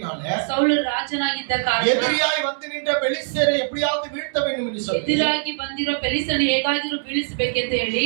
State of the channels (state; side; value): silent; left; 64 dB below the other